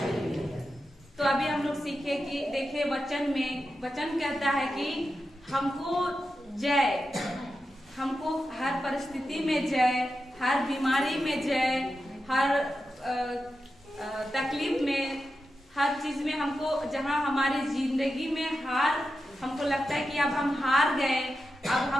तो अभी हम लोग सीखे कि देखे वचन कहता है कि हमको हर परिस्थिति में जय, हर बीमारी में जय, हर तकलीफ में, हर चीज में हमको, जहाँ हमारी जिंदगी में हमको लगता है कि अब हम हार गए, अब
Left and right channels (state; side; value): normal; both; correlation 0.90